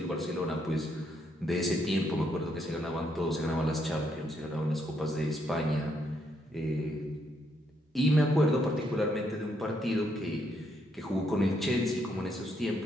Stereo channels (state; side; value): normal; both; correlation 0.75